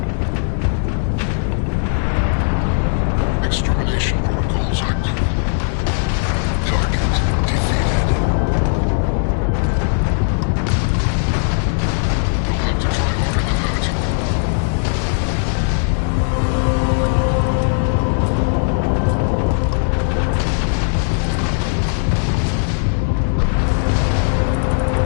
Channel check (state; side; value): silent; right; digital silence